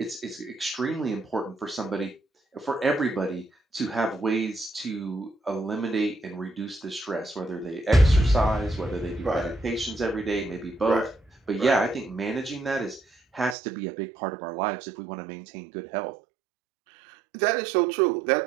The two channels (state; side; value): drops out; left; at 13.6 s